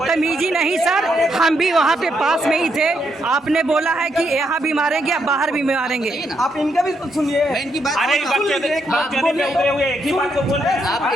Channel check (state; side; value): normal; both; correlation 0.78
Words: नहीं सर, हम भी वहाँ पे पास में ही थे। आपने बोला है कि यहाँ भी मारेंगे, या बाहर भी मारेंगे। आप इनका भी तो सुनिए। मैं इनकी बात अरे सुन लीजिए। एक ही बात को बोल रहे हैं।